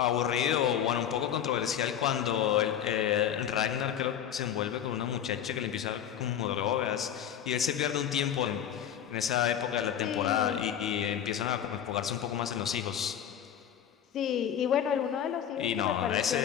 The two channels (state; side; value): quieter; right; 9.5 dB